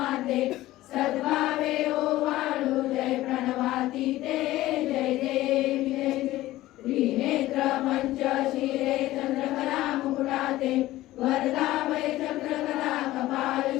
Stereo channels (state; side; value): quieter; right; 16.3 dB